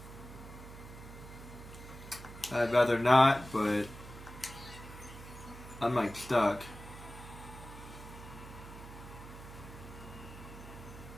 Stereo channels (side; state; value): right; noise; hum, 14 dB below the sound